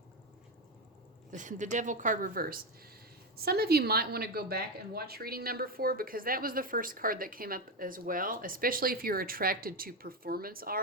The Devil card reversed. Some of you might want to go back and watch reading number 4 because that was the first card that came up as well, especially if you're attracted to performance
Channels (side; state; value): both; normal; correlation 0.11